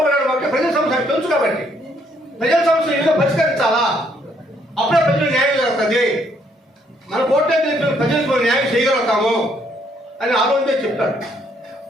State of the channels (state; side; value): normal; both; correlation 0.69